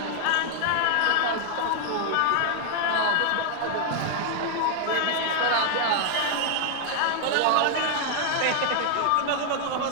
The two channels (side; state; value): both; different; correlation 0.00